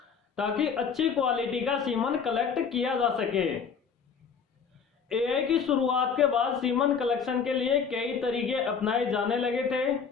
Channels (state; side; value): quieter; right; 6.2 dB